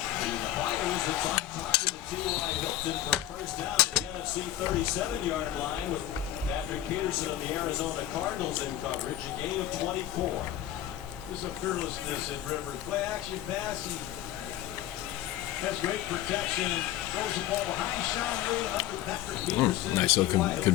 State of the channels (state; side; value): quieter; right; 13.0 dB